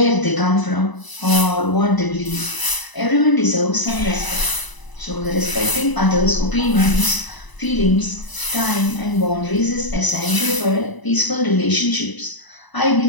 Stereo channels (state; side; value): late; right; 1.0 ms